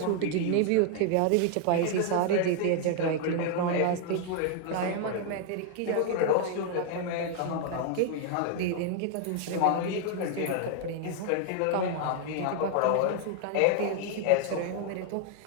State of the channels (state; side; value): different; both; correlation 0.00